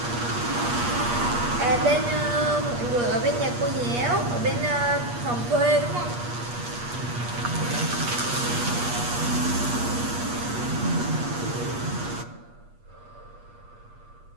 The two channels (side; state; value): left; late; 8.4 ms